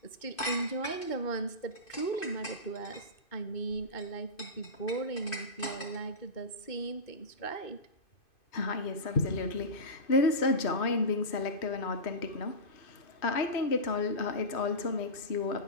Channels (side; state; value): right; late; 2.5 ms